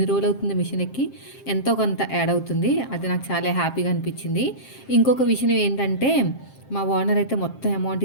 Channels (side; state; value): right; late; 7.5 ms